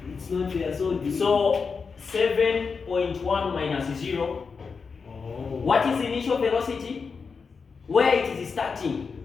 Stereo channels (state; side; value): quieter; right; 5.2 dB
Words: It's not there. So 7.1 minus 0. Oh. What is the initial velocity? Where it is starting.